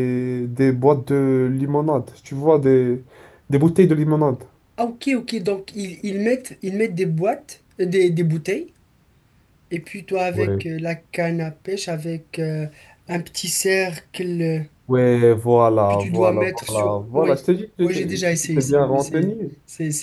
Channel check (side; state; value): both; identical; correlation 1.00